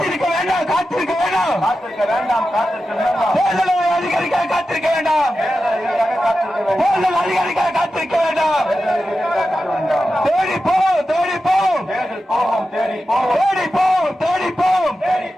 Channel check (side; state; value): both; normal; correlation 0.92